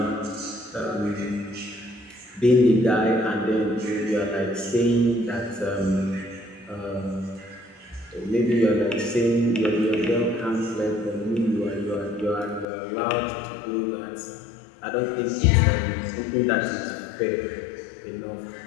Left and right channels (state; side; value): drops out; right; at 12.7 s